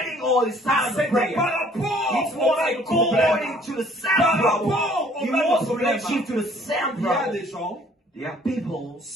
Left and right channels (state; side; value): normal; both; correlation 0.58